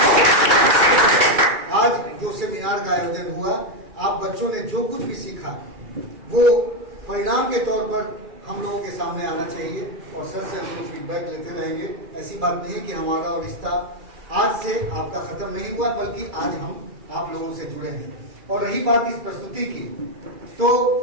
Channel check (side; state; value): left; late; 2.4 ms